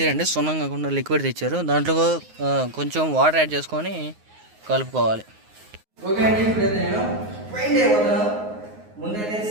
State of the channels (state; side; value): late; left; 9.5 ms